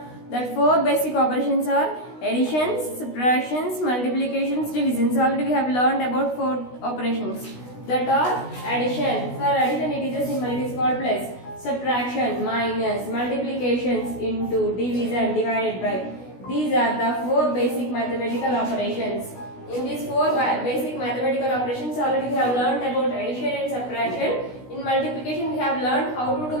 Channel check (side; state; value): right; late; 16 ms